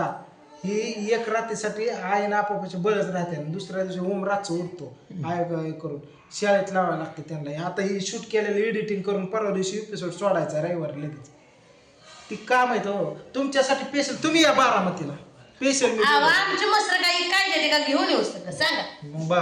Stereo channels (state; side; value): identical; both; correlation 1.00